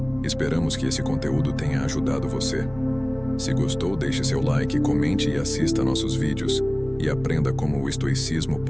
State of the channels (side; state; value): right; noise; rumble, 20 dB below the sound